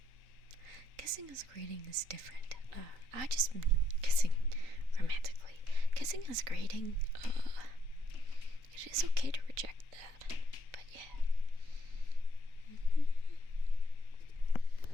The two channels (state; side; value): late; left; 3.3 ms